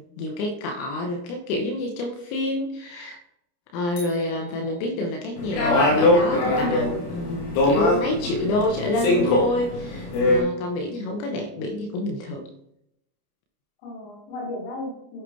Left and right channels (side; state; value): right; late; 29 ms